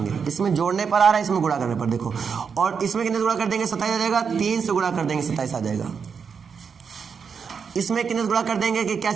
इसमें जोड़ने पर आ रहा है, इसमें गुणा करने पर देखो। और इसमें कितने से गुणा कर देंगे? 27 आ जाएगा। 3 से गुणा कर देंगे 27 आ जाएगा। इसमें कितने से गुणा कर देंगे कि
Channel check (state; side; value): quieter; left; 6.2 dB